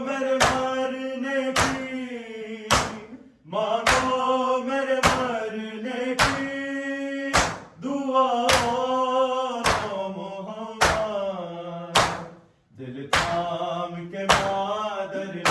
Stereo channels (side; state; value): both; identical; correlation 1.00